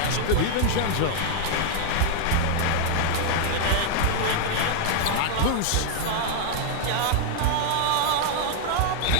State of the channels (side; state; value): both; different; correlation 0.00